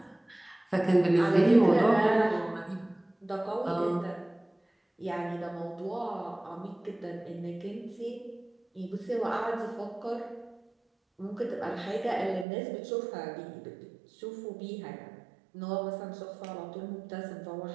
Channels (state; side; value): drops out; left; at 12.5 s